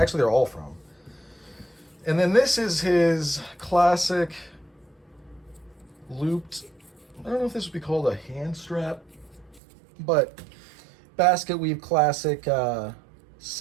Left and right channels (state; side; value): drops out; left; at 9.6 s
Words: they're all from. And then this is his classic looped, I don't know if this would be called a hand strap, but basket weave classic